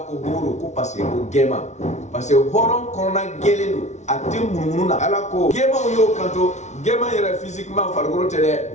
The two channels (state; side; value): late; right; 0.33 ms